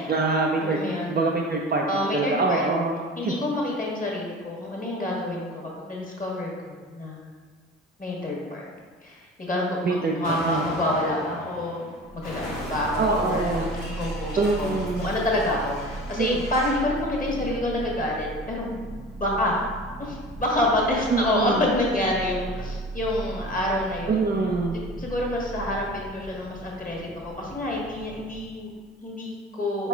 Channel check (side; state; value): both; normal; correlation 0.38